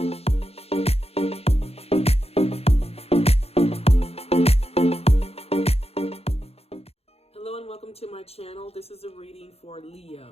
and welcome to my channel. This is a reading for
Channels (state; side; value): late; right; 0.29 ms